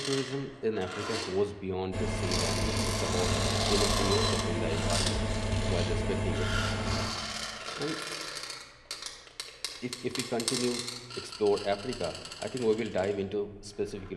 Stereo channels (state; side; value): identical; both; correlation 1.00